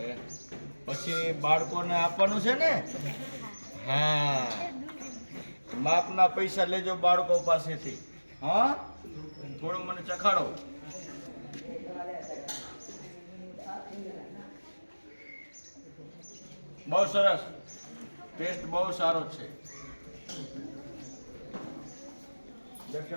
પછી બાળકોને આપવાનું છે ને? હા, માપના પૈસા લેજો બાળકો પાસેથી. હા, થોડું મને ચખાડો. બહુ સરસ, ટેસ્ટ બહુ સારો છે.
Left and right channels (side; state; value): both; inverted; correlation -1.00